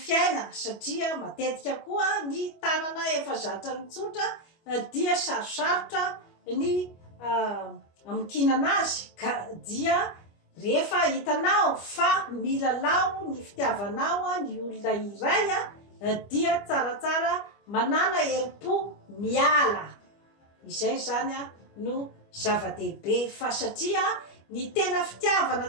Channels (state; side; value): late; right; 25 ms